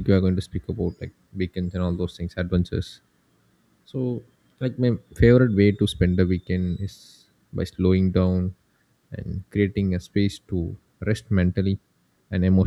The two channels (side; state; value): both; identical; correlation 1.00